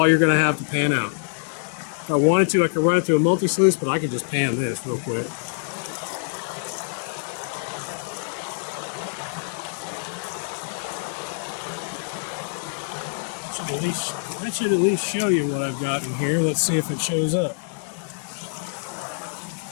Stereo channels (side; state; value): right; silent; digital silence